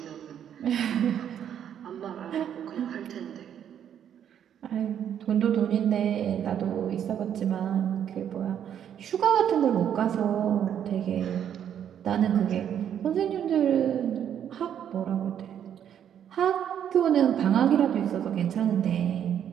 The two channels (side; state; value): left; quieter; 9.4 dB